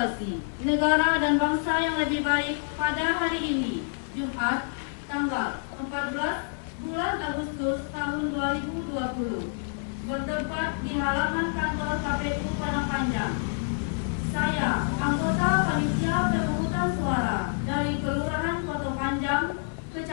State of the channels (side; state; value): right; silent; 60 dB below the other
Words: negara dan bangsa yang lebih baik, pada hari ini, Jumat, tanggal 14 bulan Agustus tahun 2020, bertempat di halaman kantor KPU Padang Panjang. Saya, anggota panitia pemungutan suara dari Kelurahan Koto Panjang,